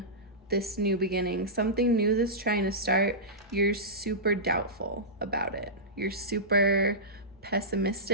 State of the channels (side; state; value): both; normal; correlation -0.15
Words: this new beginning, something new that's trying to start. You're super doubtful about it. You're super